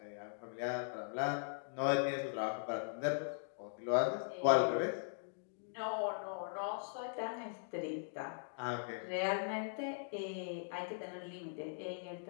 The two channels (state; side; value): silent; right; digital silence